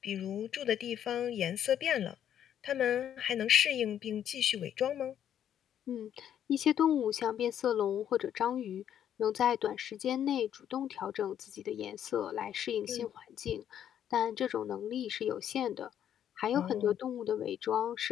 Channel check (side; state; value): right; quieter; 9.9 dB